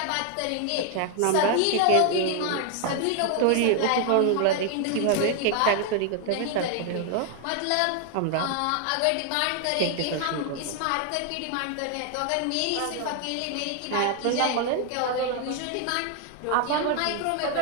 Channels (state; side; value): different; both; correlation 0.00